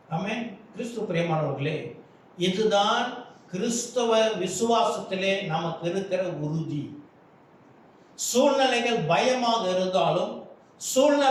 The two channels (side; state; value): both; identical; correlation 1.00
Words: ஆமென். கிறிஸ்து பிரியமானவர்களே, இதுதான் கிறிஸ்தவ விசுவாசத்திலே நமக்கு இருக்கிற உறுதி. சூழ்நிலைகள் பயமாக இருந்தாலும்,